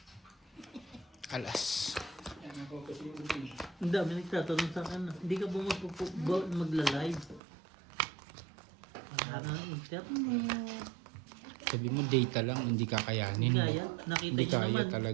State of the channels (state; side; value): drops out; left; at 7.4 s